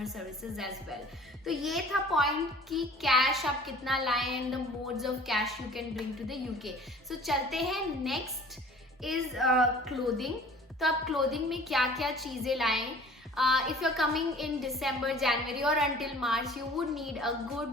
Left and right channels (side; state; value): both; normal; correlation 0.47